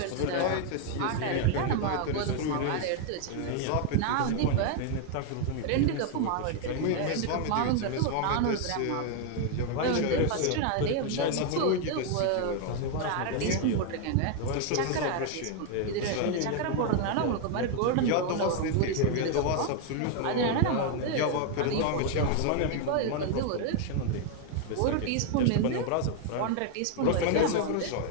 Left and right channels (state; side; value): different; both; correlation 0.00